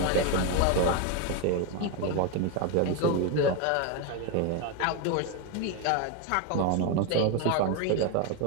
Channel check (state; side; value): different; both; correlation 0.02